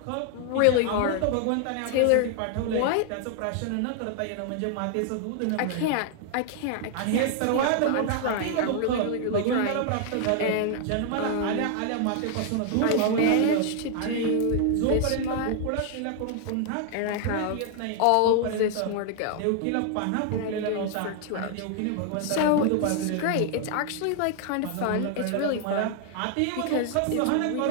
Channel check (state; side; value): different; both; correlation 0.00